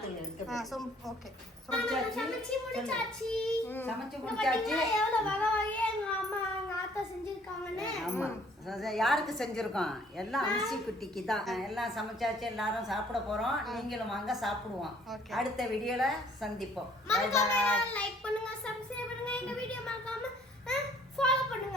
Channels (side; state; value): both; normal; correlation 0.59